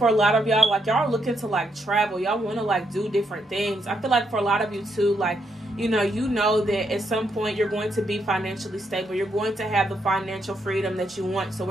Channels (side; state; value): both; normal; correlation 0.78